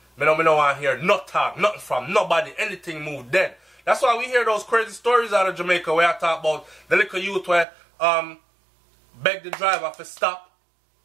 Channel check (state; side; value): drops out; left; at 7.7 s